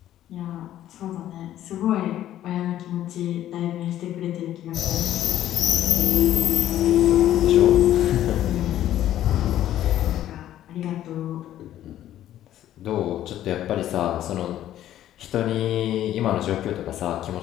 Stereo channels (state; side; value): quieter; right; 12.4 dB